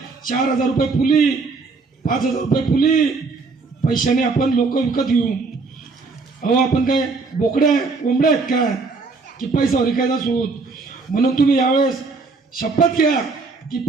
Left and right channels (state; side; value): quieter; left; 4.1 dB